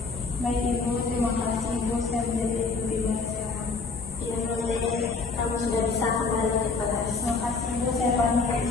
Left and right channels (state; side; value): quieter; right; 4.2 dB